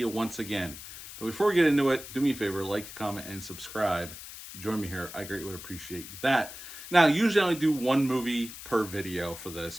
once again. But before we get into it, do me a favor, like, comment, and subscribe. Join me here. I greatly would appreciate that. Now, usually I only do one movie per video for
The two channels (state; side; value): noise; left; hiss, 13 dB below the sound